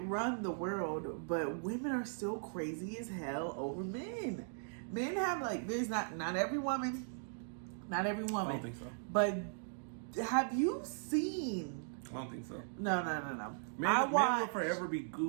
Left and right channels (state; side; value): silent; left; digital silence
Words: the world, but women are still crazy as hell over men. Men have, like, there's not every woman. I don't think so. But have you seen? I don't think so. No. Men will forever be